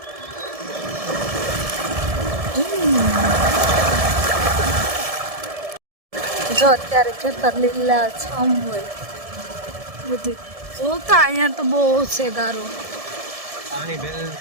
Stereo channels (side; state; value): left; late; 1.7 ms